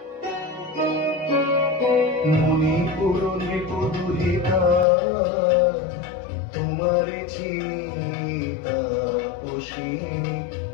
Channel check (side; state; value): right; drops out; at 4.9 s